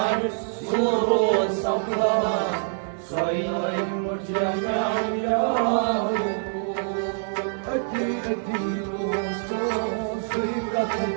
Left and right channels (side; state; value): left; silent; digital silence